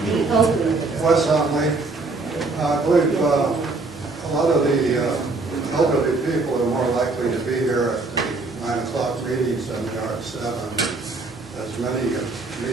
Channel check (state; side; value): quieter; left; 3.6 dB